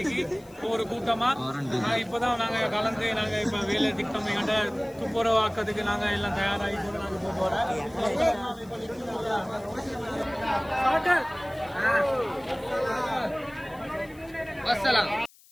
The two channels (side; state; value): left; noise; hiss, 26 dB below the sound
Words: ஒவ்வொரு கூட்டமாக இப்போதான் நாங்கள் கலந்து நாங்கள் இப்போ வேலை திட்டம் எங்கள்கிட்ட துப்புரவாக்கிறதுக்கு நாங்கள் எல்லாம் தயாராகி கூட நாங்கள் போக போகிறோம். அஸ்ஸலாம்.